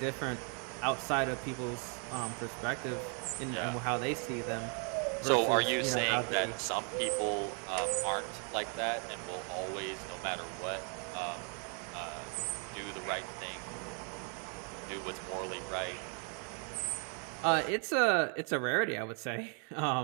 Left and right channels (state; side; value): quieter; left; 39.8 dB